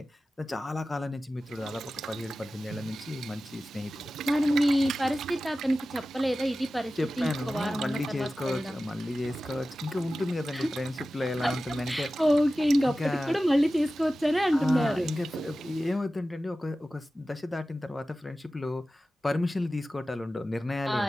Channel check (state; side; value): normal; both; correlation 0.95